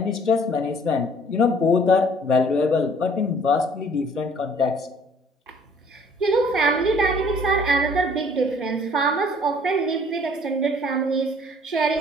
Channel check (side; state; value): both; normal; correlation 0.56